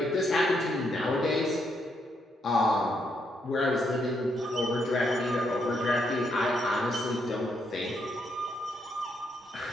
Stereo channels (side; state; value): both; normal; correlation 0.77